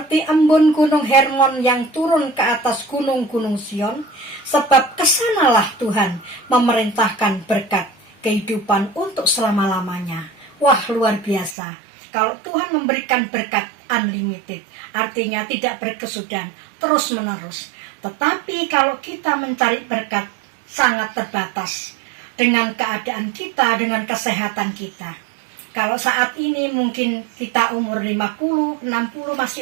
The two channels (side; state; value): left; drops out; at 11.6 s